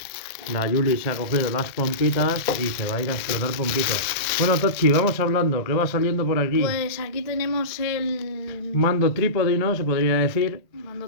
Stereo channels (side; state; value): right; late; 1.7 ms